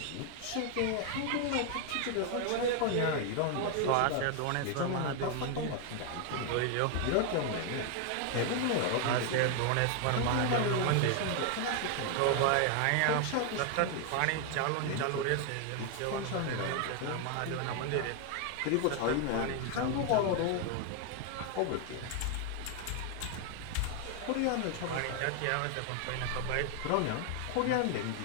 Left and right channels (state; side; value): different; both; correlation 0.01